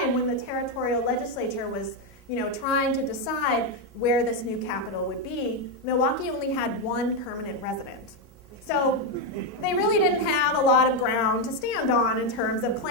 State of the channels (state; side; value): normal; both; correlation 0.05